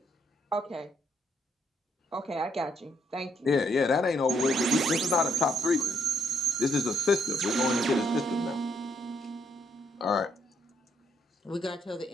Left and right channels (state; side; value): normal; both; correlation 0.72